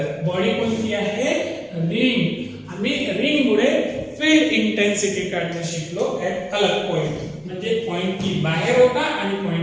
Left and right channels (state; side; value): identical; both; correlation 1.00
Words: बॉडी कोणती आहे रिंग, आम्ही रिंग मुळे फील्ड इंटेन्सिटी काढणं शिकलो ऍट अलग पॉइंट. म्हणजे पॉइंट पी बाहेर होता आणि